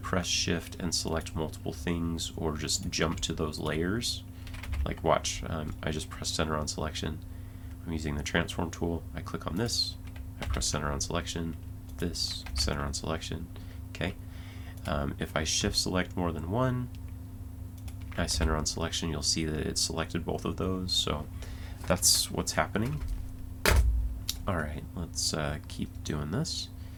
shift and select multiple things or just jump to those layers. Like watch, I just press center on selection. I'm using the transform tool, I click on this, I press center on selection, this, center on selection, okay. If I shift select more than one, I center on selection, you'll see that it selected both of those, so that's what's happening. Alright, let's keep doing this.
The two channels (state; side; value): identical; both; correlation 1.00